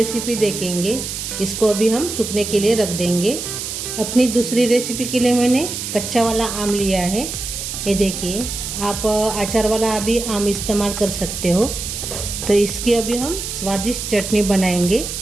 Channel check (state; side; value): noise; right; hiss, 6 dB below the sound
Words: देखेंगे। इसको अभी हम सूखने के लिए रख देंगे। अपनी दूसरी रेसिपी के लिए मैंने कच्चा वाला आम लिया है, ये देखिए। आप अचार वाला अभी आम इस्तेमाल कर सकते हो। तो इसकी अभी हम स्वादिष्ट चटनी बनाएंगे।